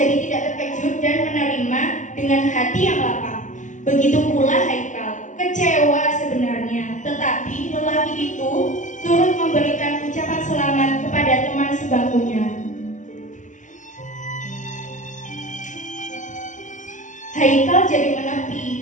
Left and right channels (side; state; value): right; late; 0.36 ms